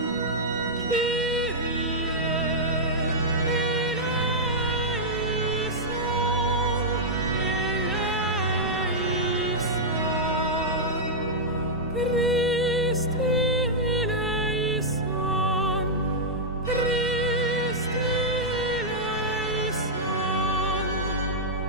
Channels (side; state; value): both; normal; correlation -0.07